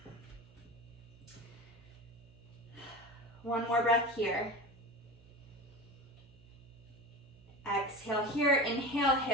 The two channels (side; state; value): right; noise; hum, 24 dB below the sound